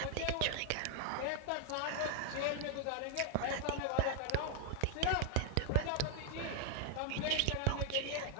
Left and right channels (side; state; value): both; different; correlation 0.00